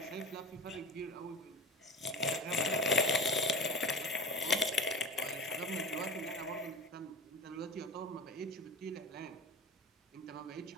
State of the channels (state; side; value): normal; both; correlation 0.32